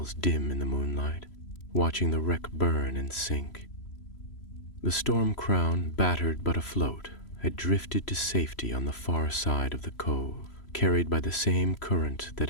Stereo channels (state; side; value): late; right; 3.0 ms